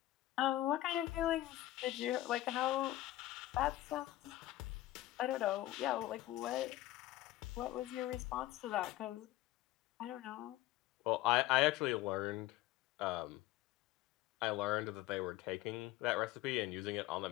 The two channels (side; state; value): right; quieter; 15.9 dB